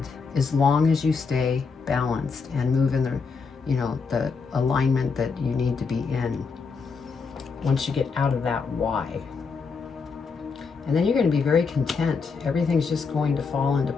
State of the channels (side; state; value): right; quieter; 5.1 dB